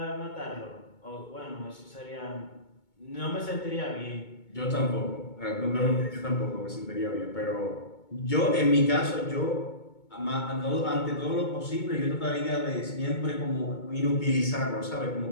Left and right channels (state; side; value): late; right; 2.2 ms